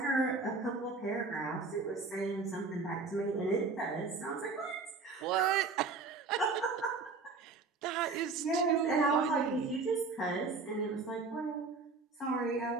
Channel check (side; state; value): left; quieter; 4.1 dB